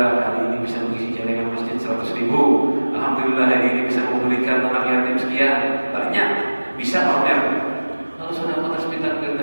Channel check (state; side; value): inverted; both; correlation -1.00